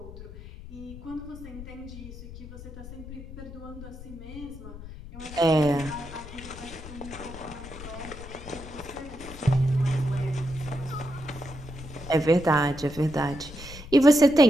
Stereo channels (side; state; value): left; noise; rumble, 13 dB below the sound